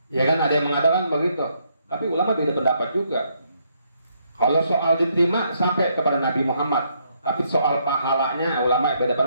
Ya kan ada yang mengatakan begitu. Tapi ulama beda pendapat juga. Kalau soal diterima sampai kepada Nabi Muhammad. Tapi soal pahalanya ulama beda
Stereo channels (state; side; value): inverted; both; correlation -0.73